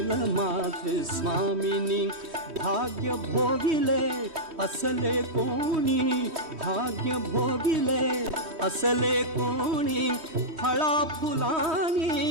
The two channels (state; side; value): late; left; 3.2 ms